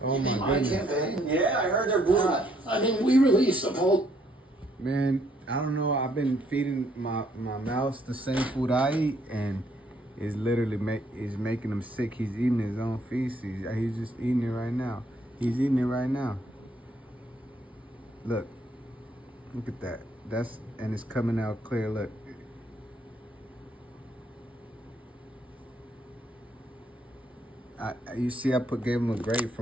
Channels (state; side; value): normal; both; correlation 0.69